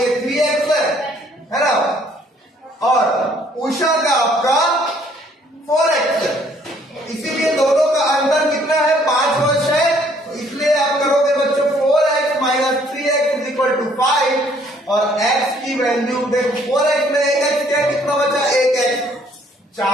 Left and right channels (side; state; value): both; normal; correlation 0.63